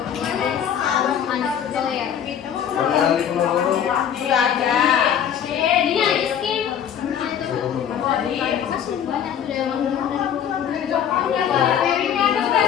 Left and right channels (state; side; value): quieter; right; 9.0 dB